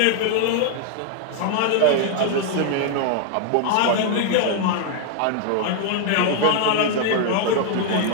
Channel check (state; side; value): different; both; correlation 0.00